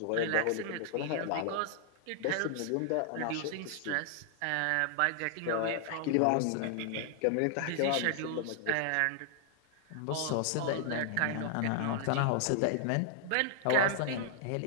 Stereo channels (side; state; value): both; different; correlation 0.00